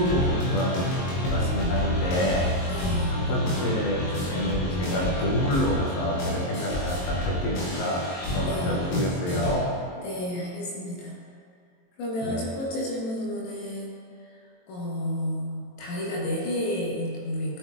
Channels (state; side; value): late; right; 22 ms